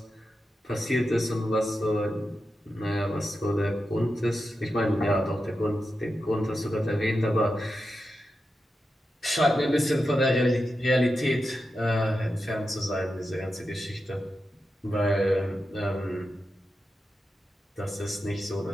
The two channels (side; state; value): both; normal; correlation 0.90